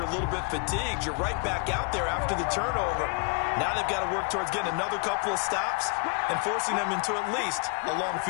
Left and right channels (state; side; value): quieter; right; 38.3 dB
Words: a little bit fatigued. You're right back out there after the turnover. Now they've got to work towards getting another couple of stops and forcing them into at least a long